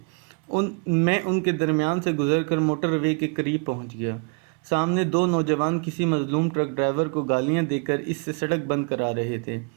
میں ان کے درمیان سے گزر کر موٹر وے کے قریب پہنچ گیا۔ سامنے 2 نوجوان کسی مظلوم ٹرک ڈرائیور کو گالیاں دے کر اس سے سڑک بند کرا رہے تھے۔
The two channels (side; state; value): left; quieter; 37.0 dB